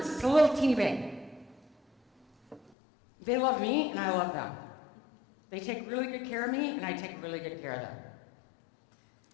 It's a little teeny bank. They love me and I love them. They take really good care of me and I take really good care of them.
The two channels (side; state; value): right; drops out; at 2.7 s